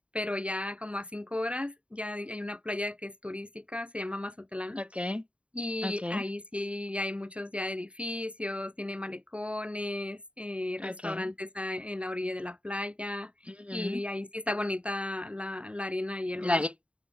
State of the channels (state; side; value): late; left; 0.061 ms